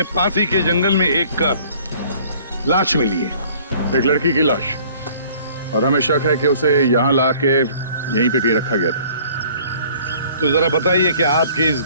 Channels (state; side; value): inverted; both; correlation -0.54